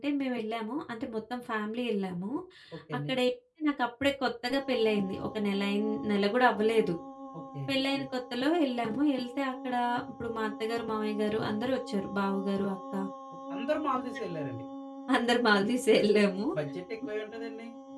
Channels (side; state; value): both; identical; correlation 1.00